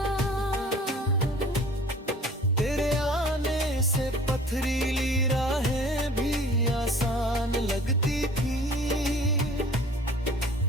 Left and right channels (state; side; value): normal; both; correlation 0.48